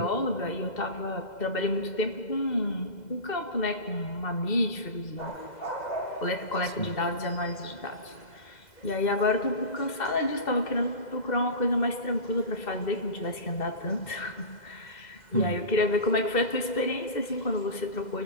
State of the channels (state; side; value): late; right; 2.0 ms